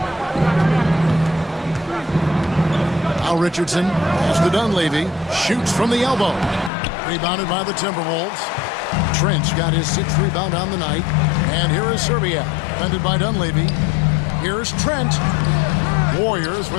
Now Richardson pass to Dunleavy. Shoots from the elbow. Rebounded by the Timberwolves. Trent's got his 6th rebound on the night. And here is Serbia. Defended by Dunleavy. Here's Trent. Warriors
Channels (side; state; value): right; drops out; at 6.7 s